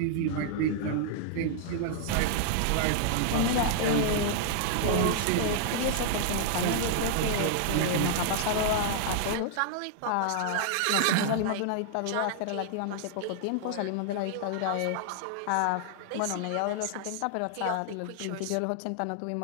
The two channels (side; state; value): both; different; correlation -0.01